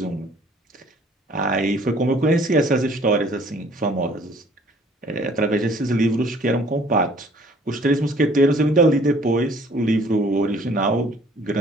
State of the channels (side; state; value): both; normal; correlation 0.56